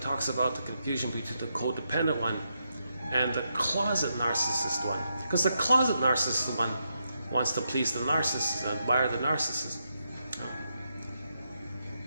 about the confusion between the codependent one and the closet narcissist one. Because the closet narcissist one wants to please the narcissist and admire the narcissist.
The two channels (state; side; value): inverted; both; correlation -0.83